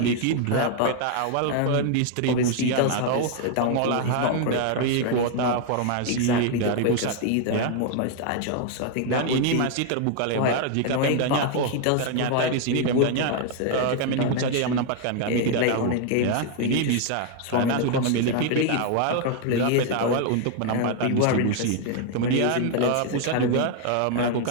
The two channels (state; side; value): different; both; correlation 0.00